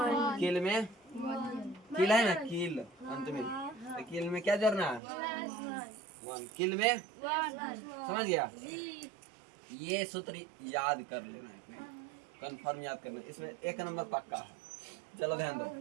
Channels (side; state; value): left; drops out; at 5.0 s